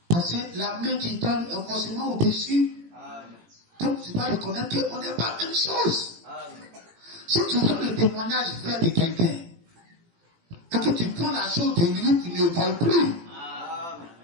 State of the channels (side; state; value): left; late; 18 ms